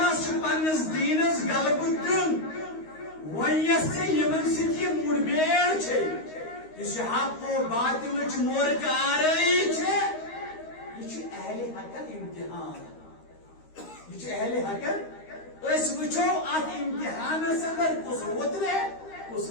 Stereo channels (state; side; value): late; right; 13 ms